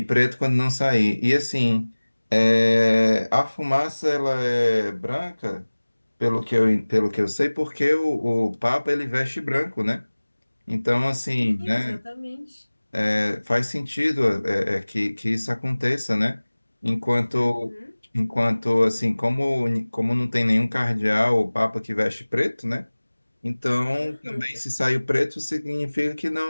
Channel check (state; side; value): inverted; both; correlation -1.00